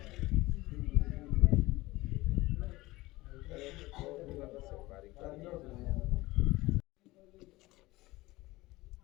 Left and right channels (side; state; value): right; quieter; 19.7 dB